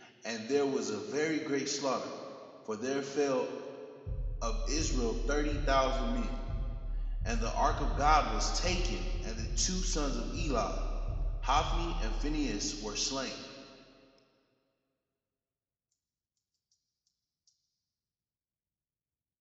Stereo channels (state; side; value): identical; both; correlation 1.00